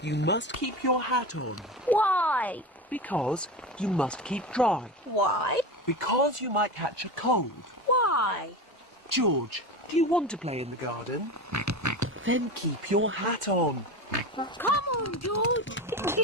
you must keep your hat on. Why? Because you must keep dry. Why? Because you might catch a cold. Why? George, do you want to play in the garden? Then keep your hat on. Come on, George.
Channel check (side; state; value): both; normal; correlation 0.25